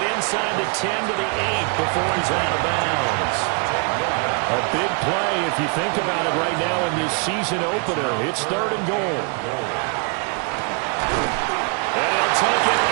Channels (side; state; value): left; quieter; 35.9 dB